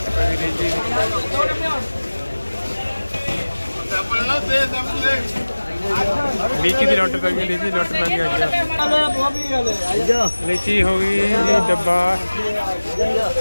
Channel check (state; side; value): inverted; both; correlation -1.00